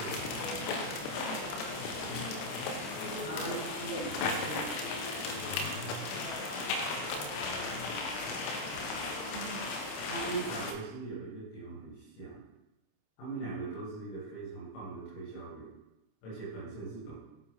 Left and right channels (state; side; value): late; right; 27 ms